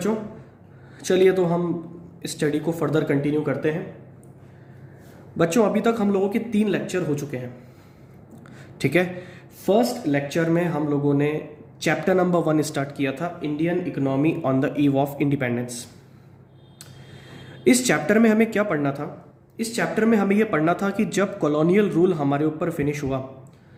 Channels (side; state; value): both; identical; correlation 1.00